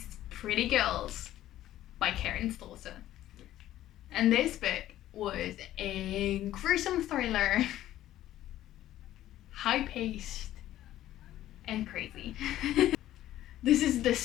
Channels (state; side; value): quieter; right; 13.5 dB